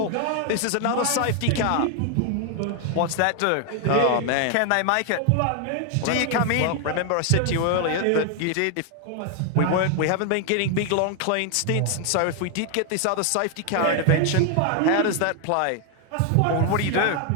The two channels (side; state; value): both; different; correlation 0.00